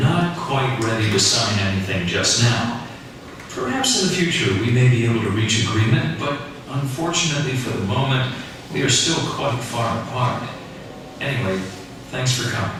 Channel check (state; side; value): identical; both; correlation 1.00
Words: quite ready to sign anything just now. Perhaps in the future we may be able to reach agreement, but unfortunately for the moment, we are still quite far apart. Anyway, thanks for coming.